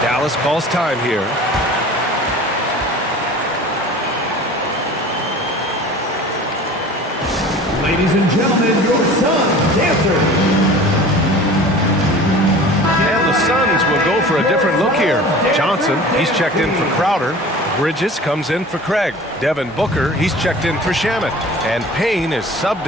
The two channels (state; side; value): normal; both; correlation 0.41